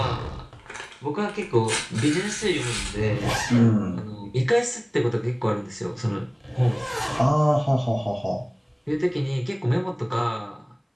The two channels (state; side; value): identical; both; correlation 1.00